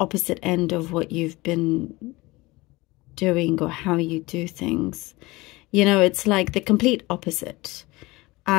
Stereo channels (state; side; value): quieter; right; 21.6 dB